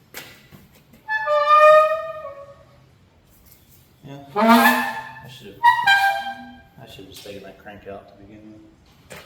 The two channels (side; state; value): both; identical; correlation 1.00